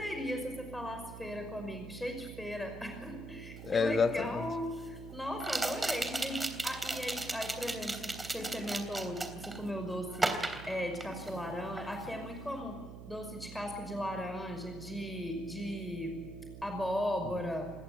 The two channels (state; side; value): noise; right; hum, 11 dB below the sound